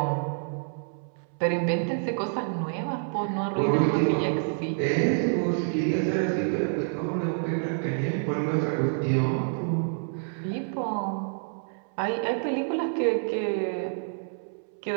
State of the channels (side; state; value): left; silent; 60 dB below the other